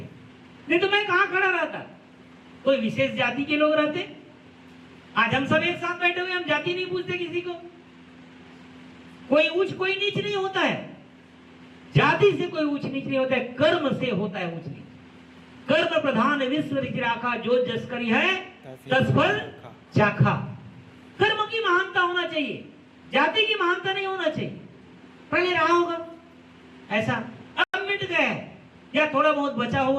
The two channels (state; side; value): identical; both; correlation 1.00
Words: नहीं तो मैं कहां खड़ा रहता? कोई विशेष जाति के लोग रहते। आज हम सब एक साथ बैठे हुए, हम जाति नहीं पूछते किसी को। कोई ऊंच कोई नीच नहीं होता है। जाति से कोई ऊंच नीच नहीं होता है, कर्म से होता है ऊंच नीच। कर्म प्रधान विश्व राखा, जो जस करी है तस फल चाखा। कर्म की महानता होना चाहिए, जाति की महानता नहीं होना चाहिए। पहले रहा होगा ऐसा, अब मिट गया है, या थोड़ा बहुत बचा